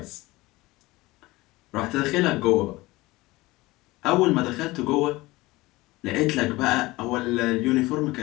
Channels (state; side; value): quieter; right; 20.2 dB